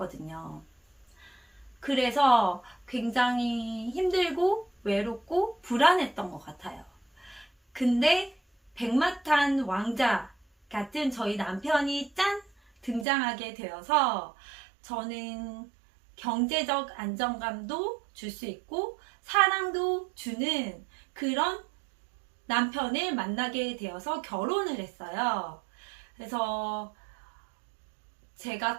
그래서 굉장히 힘들고 외롭고 불안했던 것 같아요. 근데 백마탄 왕자 같은 저희 남편이 짠! 등장하게 되어서 저는 경제적 안정감도 줄 수 있고 사랑도 주는 그런 남편을 만나게 되어서 결혼을 했어요. 그래서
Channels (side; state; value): left; drops out; at 13.1 s